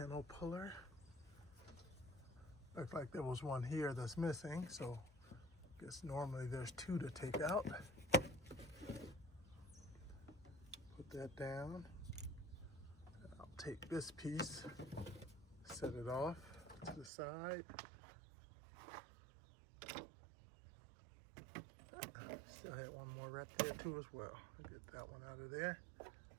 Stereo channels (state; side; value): drops out; left; at 17.1 s